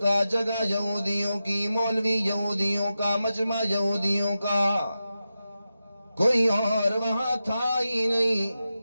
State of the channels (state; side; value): inverted; both; correlation -0.91